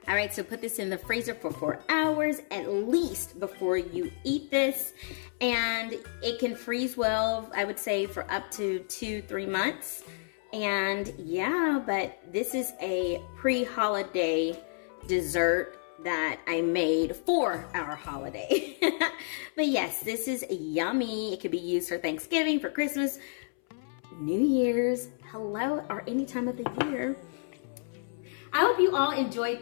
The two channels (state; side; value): silent; right; 58 dB below the other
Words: All right, so put this in the freezer for 4 hours at least before you eat this. And it can freeze well, I would say, for up to 2-3 months. And yeah, but this is a pre-holiday dessert that I made for our holiday. But yes, this is yummy. It could be used for Thanksgiving, for Christmas, New Year's, hello, or any time of the year. I hope you all